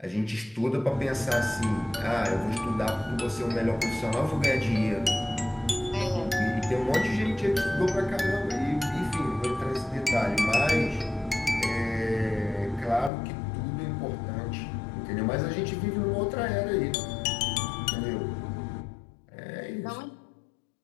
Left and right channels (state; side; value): drops out; right; at 13.1 s